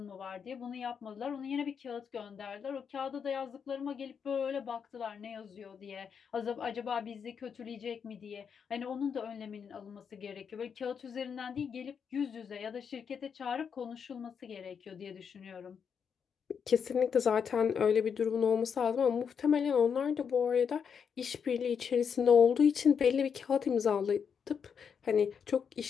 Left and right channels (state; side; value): quieter; right; 6.9 dB